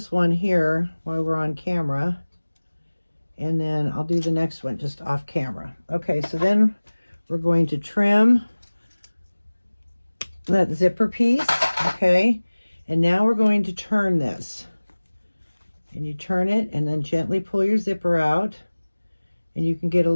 one here while we're on camera, and then I'll do the next one just off camera. Okay, so then we're going to trim that zipper piece, okay? And now we're going to turn this. And you turn it and then gently pull your zipper out. And you can get a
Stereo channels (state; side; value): inverted; both; correlation -1.00